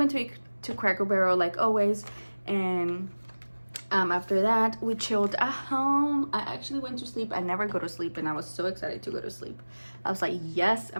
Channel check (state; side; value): inverted; both; correlation -1.00